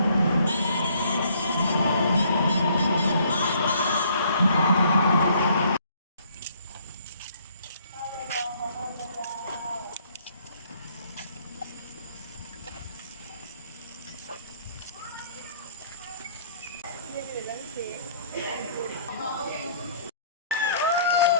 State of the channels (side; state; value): both; inverted; correlation -0.61